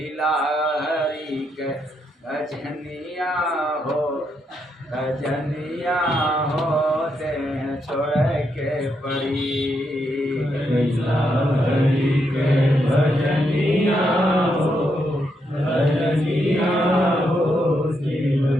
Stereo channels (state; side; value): normal; both; correlation 0.80